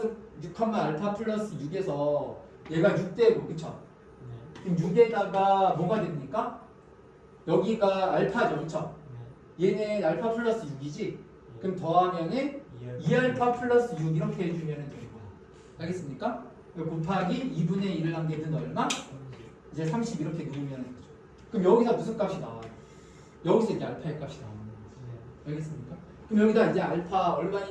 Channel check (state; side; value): identical; both; correlation 1.00